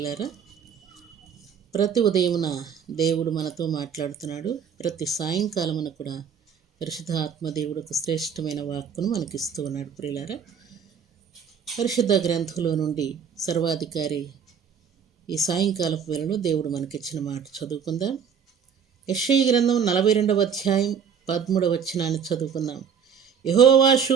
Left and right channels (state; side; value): quieter; left; 7.2 dB